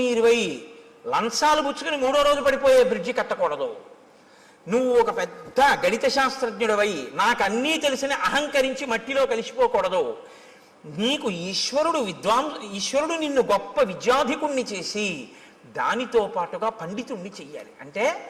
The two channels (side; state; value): both; identical; correlation 1.00